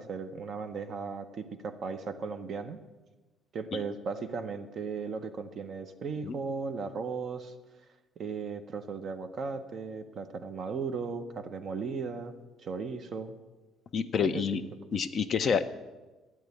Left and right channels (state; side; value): normal; both; correlation 0.61